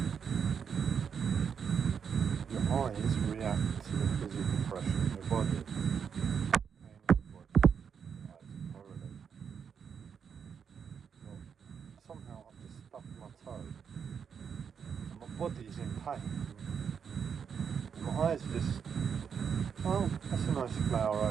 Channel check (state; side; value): quieter; left; 7.0 dB